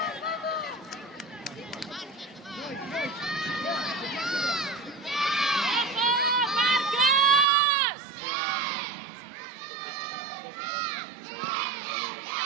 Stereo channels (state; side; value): drops out; left; at 7.5 s